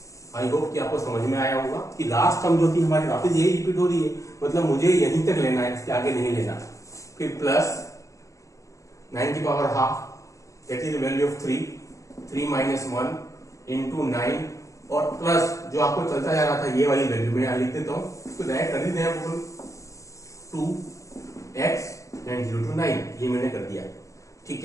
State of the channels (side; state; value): right; late; 0.16 ms